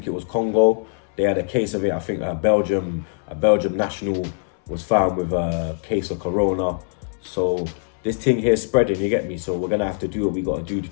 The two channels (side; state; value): right; silent; 64 dB below the other